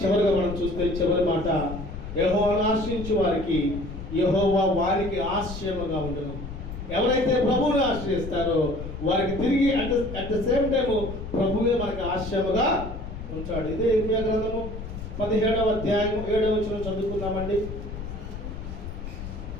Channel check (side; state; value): left; noise; rumble, 9 dB below the sound